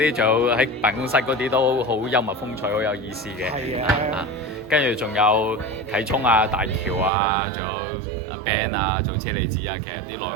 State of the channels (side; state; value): left; drops out; at 7.1 s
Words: 就喺辦公室嗰啲都好幽默風趣，好有意思嘅。係啊。跟住仲有啟聰啊、大橋啊，仲有阿 Ben 啊，做車厘子啊，其實啲內